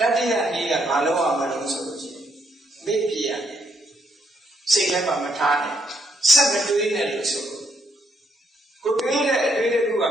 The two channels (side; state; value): both; normal; correlation 0.74